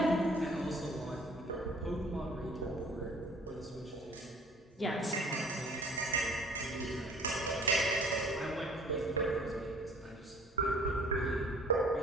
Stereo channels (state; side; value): normal; both; correlation 0.53